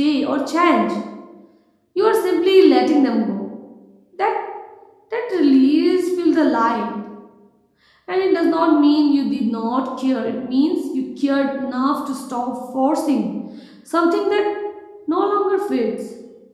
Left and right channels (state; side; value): identical; both; correlation 1.00